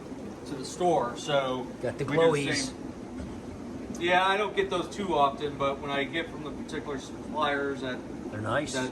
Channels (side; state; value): both; identical; correlation 1.00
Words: to the store. So Got the we do glowies. same- Yeah, I don't get those too often, but when I get from the particular suppliers They're nice. they're